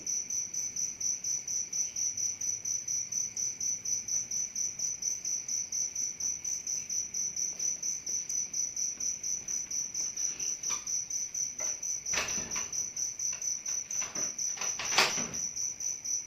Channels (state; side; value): identical; both; correlation 1.00